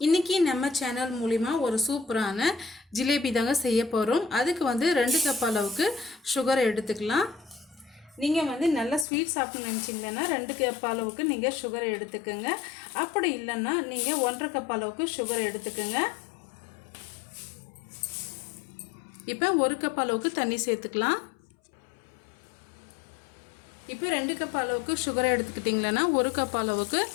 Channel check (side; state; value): right; drops out; at 9.1 s